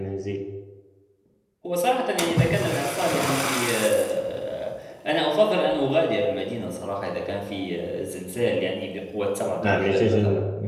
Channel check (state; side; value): identical; both; correlation 1.00